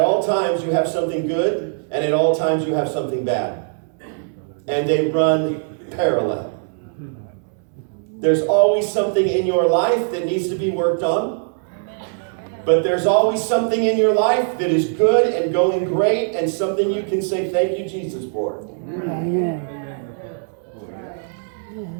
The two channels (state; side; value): silent; left; digital silence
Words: times you have something good, and at all times you have something bad. And they run parallel. There's always something in your life that needs to be worked on. But there's always something in your life that is good and going great and something you can say thank you, Jesus, for. Amen.